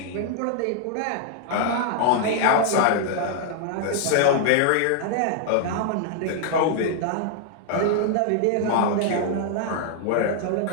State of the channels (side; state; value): both; different; correlation 0.00